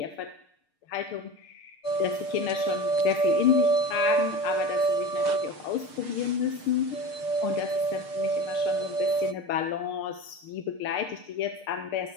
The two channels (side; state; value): right; late; 6.6 ms